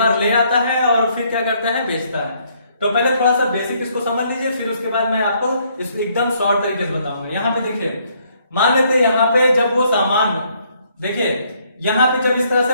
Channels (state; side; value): inverted; both; correlation -0.68